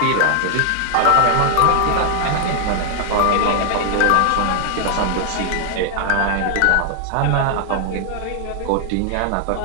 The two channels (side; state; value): both; different; correlation 0.00